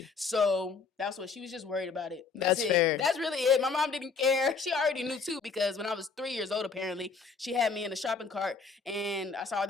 So that's what she was just worried about it. That's fair. That's really it. My mom didn't care. She already knew too, because when I was 3 years old, apparently she had me in a shopping cart, and I saw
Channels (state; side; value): quieter; right; 4.8 dB